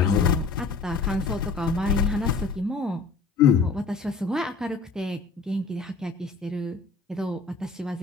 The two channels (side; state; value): right; quieter; 4.3 dB